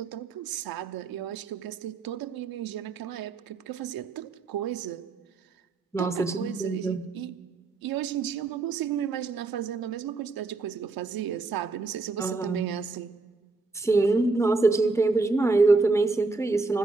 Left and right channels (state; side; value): quieter; left; 3.8 dB